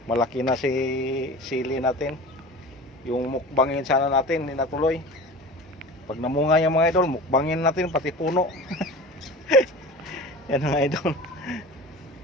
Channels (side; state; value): both; normal; correlation 0.35